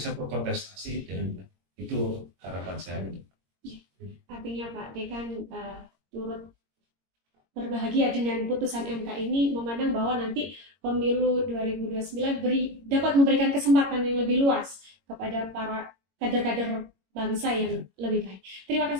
berkontestasi, dan itu harapan saya. Artinya Pak Dekan turut berbahagia dengan putusan MK ini, memandang bahwa nanti pemilu 2029 dapat memberikan kesempatan yang lebih luas kepada para kader-kader bangsa yang lebih baik. Terima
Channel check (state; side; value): late; left; 22 ms